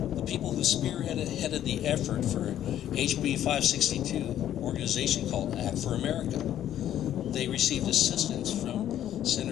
The people who spearheaded the effort for HB 562, organization called Act for America, they received assistance from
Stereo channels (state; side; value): quieter; right; 11.3 dB